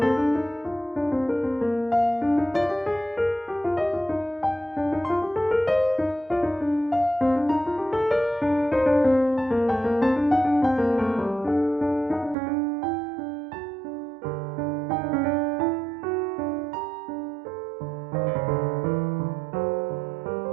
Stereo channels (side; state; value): left; drops out; at 12.4 s